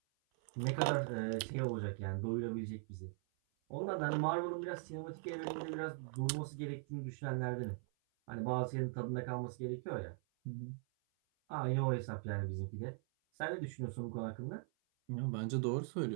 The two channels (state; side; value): silent; left; 51 dB below the other